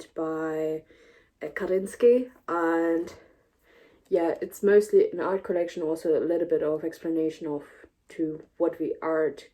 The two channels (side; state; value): both; identical; correlation 1.00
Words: by Kandinsky, and yeah, it's mostly an art collection, also a little bit of explanation of to what the art